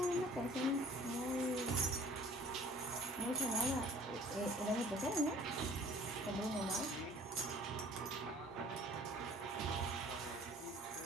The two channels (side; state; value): both; normal; correlation 0.51